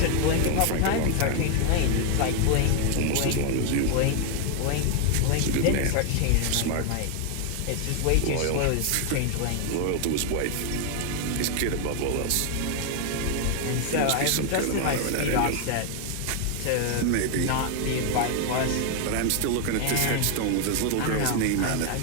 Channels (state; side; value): different; both; correlation 0.00